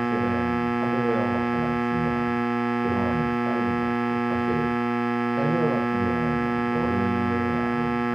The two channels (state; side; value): noise; right; hum, 28 dB below the sound